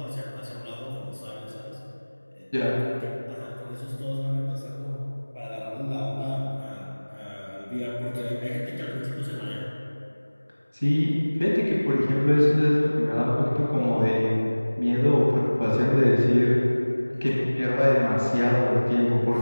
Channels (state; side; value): inverted; both; correlation -1.00